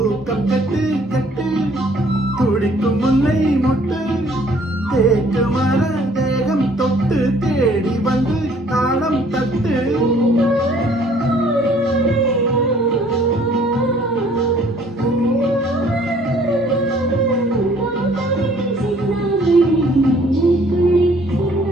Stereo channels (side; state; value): both; normal; correlation 0.59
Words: கட்டு கட்டு துடிக்கும் முல்லை மொட்டு தேக்கு மர தேகம் தொட்டு தேடி வந்து தாளம் தட்டு.